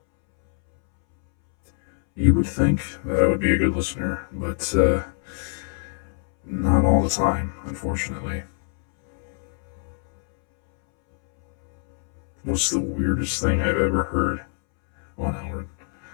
You would think that I would be a good listener, but not all the time, unfortunately. What's the weirdest thing I've ever heard? Well, now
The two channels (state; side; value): silent; right; 63 dB below the other